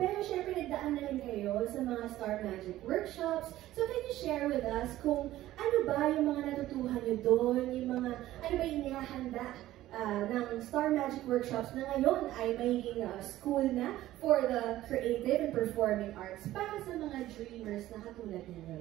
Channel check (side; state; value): left; quieter; 14.8 dB